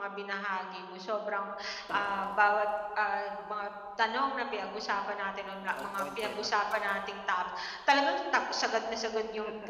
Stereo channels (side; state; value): both; identical; correlation 1.00